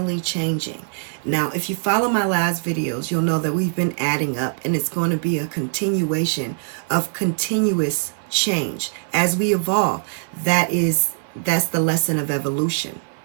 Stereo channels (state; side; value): silent; left; 57 dB below the other